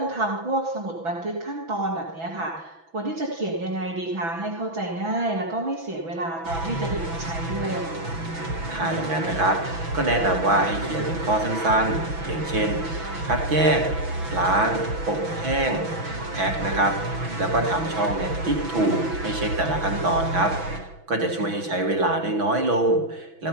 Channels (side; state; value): left; late; 6.1 ms